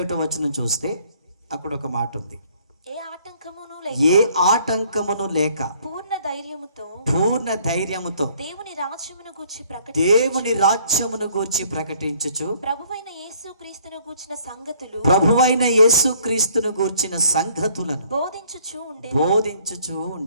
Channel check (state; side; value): inverted; both; correlation -0.61